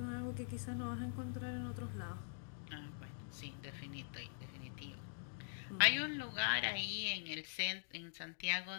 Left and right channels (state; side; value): silent; right; digital silence